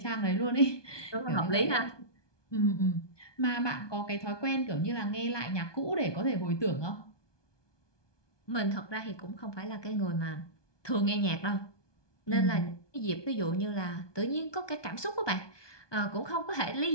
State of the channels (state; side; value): late; right; 1.2 ms